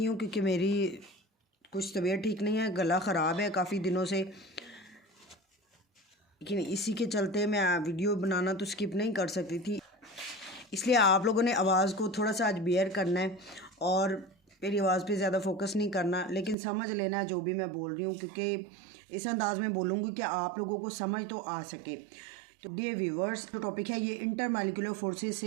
हूँ क्योंकि मेरी कुछ तबीयत ठीक नहीं है, गला ख़राब है काफ़ी दिनों से, लेकिन इसी के चलते मैं वीडियो बनाना तो स्किप नहीं कर सकती थी। इसलिए आप लोगों ने आवाज़ को थोड़ा सा आज बेयर करना है और मेरी आवाज़ पे ज़्यादा फोकस नहीं करना, लेकिन समझ लेना है जो भी मैं बोल रही हूँ, क्योंकि इस अंदाज़ में बोलूँगी कि आप लोगों को समझ तो आ सके। तो डियर व्यूवर्स, जो टॉपिक है ये इंटरमॉलिक्यूलर फोर्सेस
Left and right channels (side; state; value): left; drops out; at 16.6 s